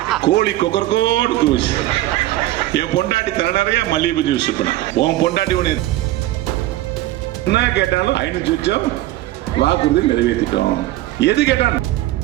கோழி கொக்கரக்கோடு கூச்சு. என் பொண்டாட்டி தர நிறைய மல்லிகை ஜூஸ் பண்ணா. உன் பொண்டாட்டி உன்னை என்ன கேட்டாலும் 500 லட்சம் வாக்குறுதி நிறைவேற்றிட்டோம். எது கேட்டான்?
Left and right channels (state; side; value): quieter; left; 16.0 dB